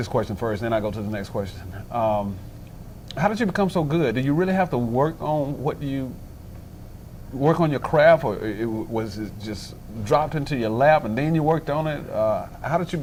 question first, then I'll go to the next question. How did you become so good? Did you really have to work on work on your craft, or was it just dropped into your lap and then you worked on it? How did you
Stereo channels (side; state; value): both; identical; correlation 1.00